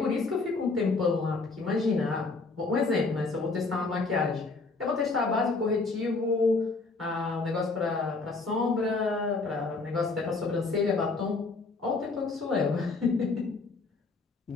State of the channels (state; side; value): quieter; right; 3.8 dB